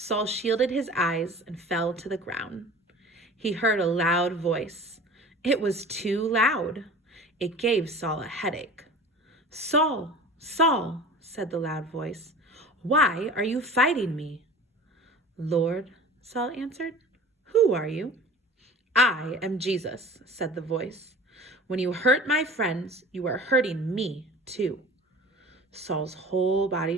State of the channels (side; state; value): both; normal; correlation 0.40